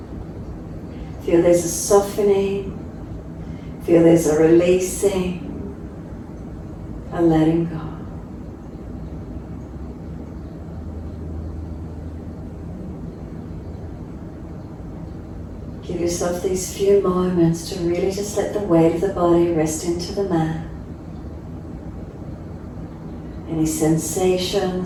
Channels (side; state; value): both; identical; correlation 1.00